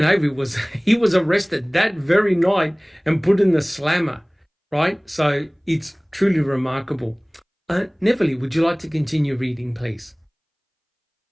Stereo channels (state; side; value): identical; both; correlation 1.00